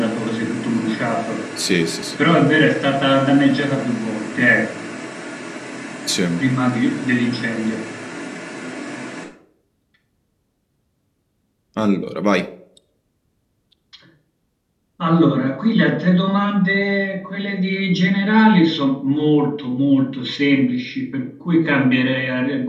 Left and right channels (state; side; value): identical; both; correlation 1.00